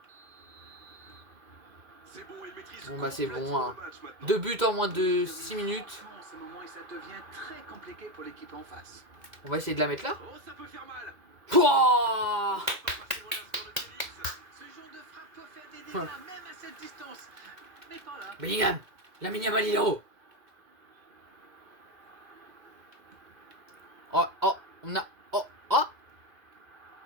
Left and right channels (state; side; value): late; left; 2.1 ms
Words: Bon bah c'est bon, hein. 2 buts en moins de 6 minutes. En ce moment, et ça devient très compliqué pour l'équipe en face. On va essayer de la mettre là. Oh, ça peut faire mal. Pouah, Ce genre de frappe peut faire des dégâts même à cette distance. Mais pas là. Bellingham, Lamine Yamal il est haut. Oh, oh, on a... Oh, oh.